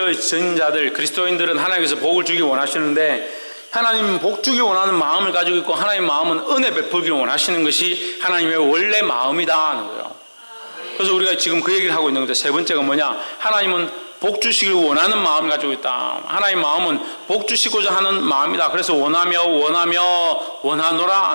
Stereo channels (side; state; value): both; inverted; correlation -1.00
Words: 자들, 그리스도인들은 하나님께서 복을 주기 원하시는데 하나님 복 주기 원하는 마음을 가지고 있고 하나님 마음은 은혜 베풀기를 원하시는 것이 하나님의 원래 마음이다 하는 거예요. 그래서 우리가 지금 그 얘기를 하고 있는 거죠. 세 번째가 뭐냐? 하나님은 복 주시길 원하는 마음을 가지고 있다. 하나님 마음은 복 주시고자 하는 마음이다. 그래서 원하노라